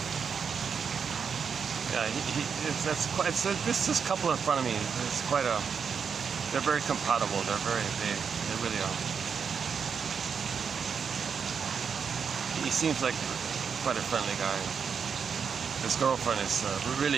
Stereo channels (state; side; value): quieter; left; 6.4 dB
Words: Yeah, this couple in front of me. It's quite a. They're very compatible. They really are. He seems like quite a friendly guy. His girlfriend is